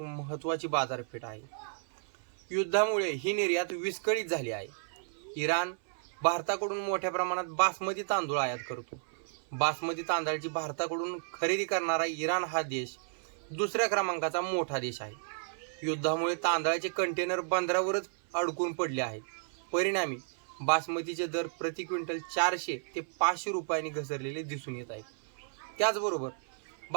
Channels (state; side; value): silent; left; 56 dB below the other